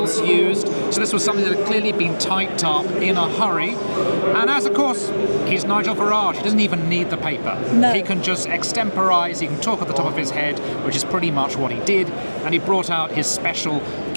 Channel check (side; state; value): both; inverted; correlation -1.00